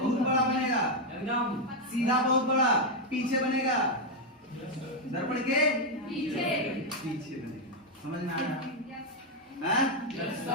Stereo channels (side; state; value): both; normal; correlation 0.02